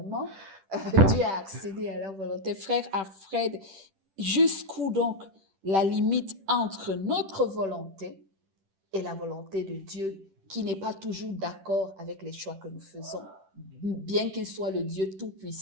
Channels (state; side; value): late; left; 10 ms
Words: Dieu a accédé à leur volonté. Frère Alfred, jusqu'où donc la limite entre notre volonté et la volonté de Dieu, qui n'est pas toujours d'accord avec les choix que nous faisons, bien qu'il soit le Dieu